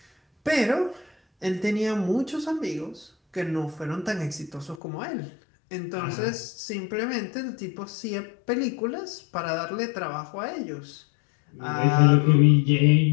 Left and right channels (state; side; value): drops out; right; at 4.8 s